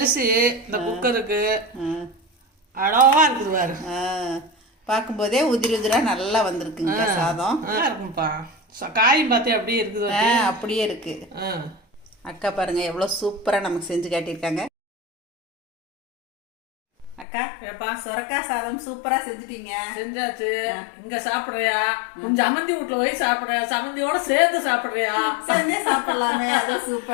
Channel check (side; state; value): right; drops out; at 17.2 s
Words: இந்த குக்கருக்கு அழகா இருக்குது பாரு. பார்க்கும்போதே உதிரா நல்லா வந்திருக்குங்க சாதம். இருக்கும்ப்பா. காயும் பார்த்தியா அப்படியே இருக்குது? அப்படியே இருக்கு. அக்கா பாருங்க எவ்வளோ சூப்பராக நமக்கு செஞ்சு காட்டியிருக்காங்க. அக்கா, சொரக்காய் சாதம் சூப்பரா செஞ்சுட்டீங்க. செஞ்சாச்சு. இங்க சாப்பிடுறியா? கொஞ்சம் அமந்தி வீட்டுல போய் சாப்பிடுறியா? சமந்தியோட சேர்ந்து சாப்பிடுறியா? சேர்ந்தே சாப்பிடலாமே, அது